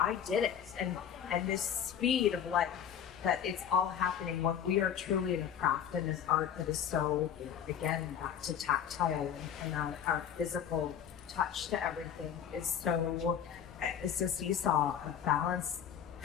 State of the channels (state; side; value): quieter; right; 8.8 dB